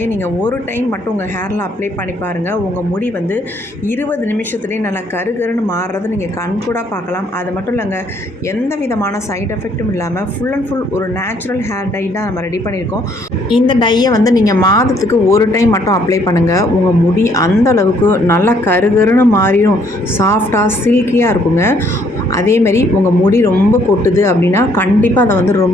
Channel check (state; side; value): normal; both; correlation 0.66